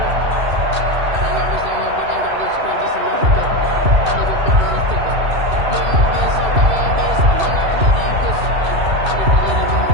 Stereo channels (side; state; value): left; late; 2.6 ms